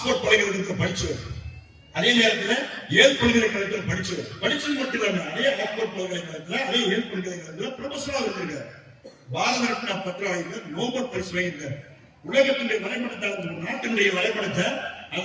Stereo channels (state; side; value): identical; both; correlation 1.00